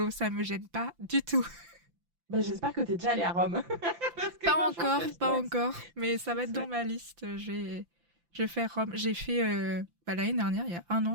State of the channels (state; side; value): late; left; 5.9 ms